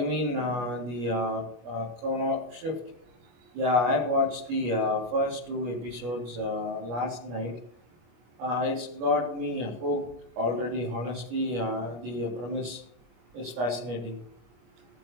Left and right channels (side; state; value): left; late; 25 ms